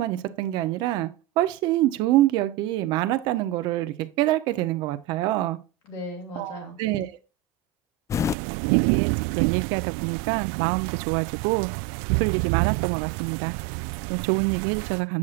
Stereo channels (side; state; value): left; drops out; at 8.3 s